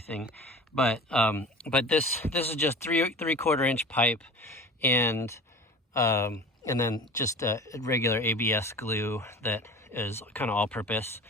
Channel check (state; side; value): normal; both; correlation 0.37